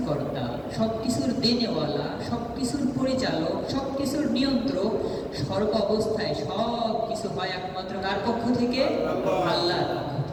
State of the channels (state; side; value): identical; both; correlation 1.00